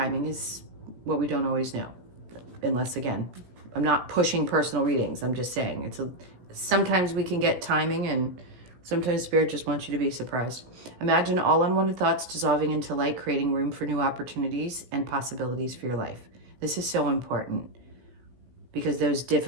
is what we don't always know. Unless, again, I'm not pushing personal readings. I'm just saying sometimes we can get timing and sometimes Spirit just wants you to be surprised. Imagine all unwanted thoughts dissolving into light, creating room for new opportunities and possibilities for your life. This is so important because those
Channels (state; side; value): late; left; 16 ms